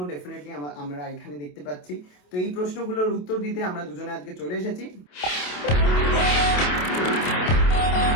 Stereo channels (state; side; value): late; right; 27 ms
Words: ডেফিনেটলি আমরা এখানে দেখতে পাচ্ছি। তো এই প্রশ্নগুলোর উত্তর দিতে আমরা দুজনে আজকে চলে এসেছি।